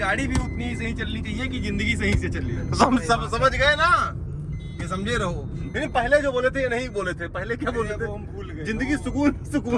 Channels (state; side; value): identical; both; correlation 1.00